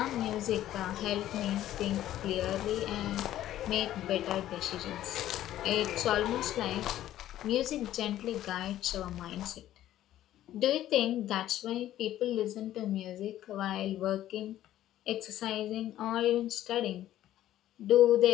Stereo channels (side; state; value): right; quieter; 13.0 dB